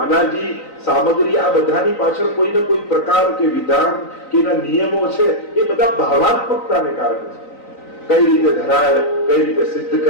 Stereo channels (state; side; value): late; right; 3.9 ms